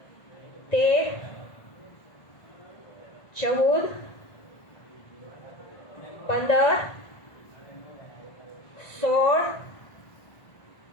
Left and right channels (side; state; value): right; late; 1.9 ms